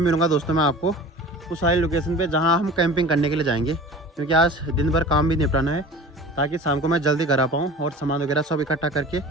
मिलूँगा दोस्तों मैं आपको उस वाली लोकेशन पे जहाँ हम कैंपिंग करने के लिए जाएंगे, क्योंकि आज दिन भर काम भी निपटाना है ताकि शाम को मैं जल्दी घर आ पाऊँ और सामान वगैरह सब इकट्ठा करके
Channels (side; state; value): both; normal; correlation 0.39